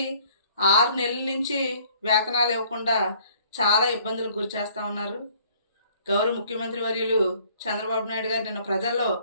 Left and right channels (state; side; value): inverted; both; correlation -0.58